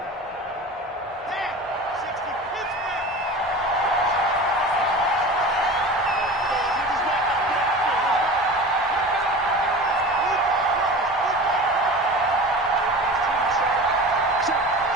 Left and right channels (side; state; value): both; normal; correlation 0.35